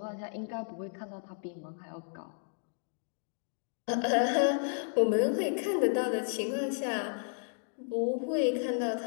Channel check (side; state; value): right; silent; digital silence